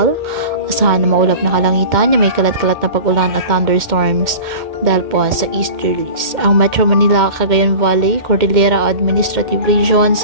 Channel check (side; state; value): left; late; 2.1 ms